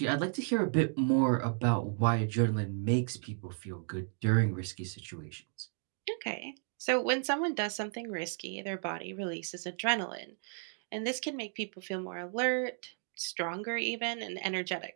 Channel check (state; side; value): silent; left; 55 dB below the other